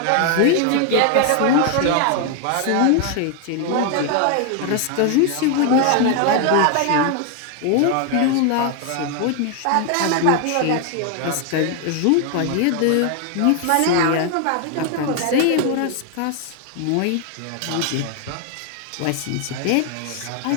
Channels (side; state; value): both; different; correlation 0.00